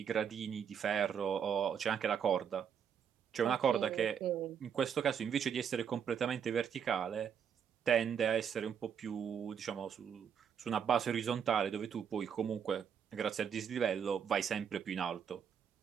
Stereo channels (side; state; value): left; quieter; 7.7 dB